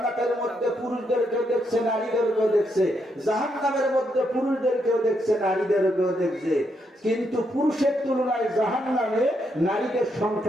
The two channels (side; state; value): both; normal; correlation 0.78